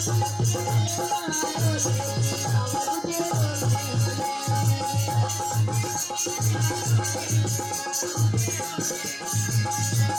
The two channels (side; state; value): both; identical; correlation 1.00